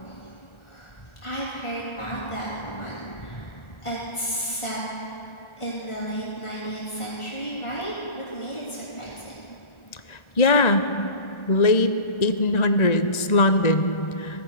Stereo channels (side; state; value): right; late; 1.4 ms